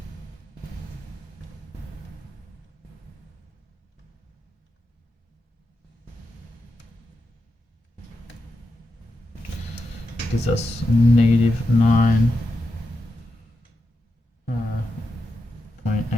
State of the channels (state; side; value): normal; both; correlation 0.87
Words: Gives us negative